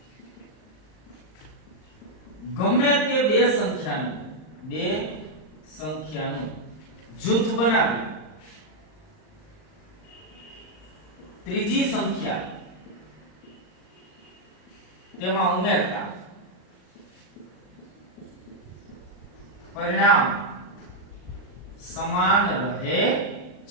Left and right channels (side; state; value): right; late; 39 ms